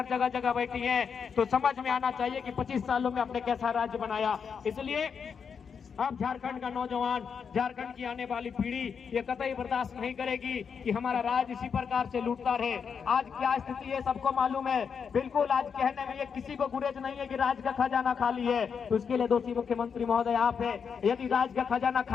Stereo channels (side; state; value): right; quieter; 6.5 dB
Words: जगह जगह बैठी हैं। तो समझ में आना चाहिए कि 25 सालों में हमने कैसा राज्य बनाया। इसलिए अब झारखंड का नौजवान, झारखंड की आने वाली पीढ़ी ये कतई बर्दाश्त नहीं करेगी कि हमारा राज्य इसी प्रकार से लूटता रहे। आज क्या स्थिति है सबको मालूम है। बिल्कुल आज कहने में ये किसी को गुरेज नहीं है कि राज्य का खजाना खाली है, तो इसके लिए दोषी मुख्यमंत्री महोदय आप है। यदि राज्य का खजाना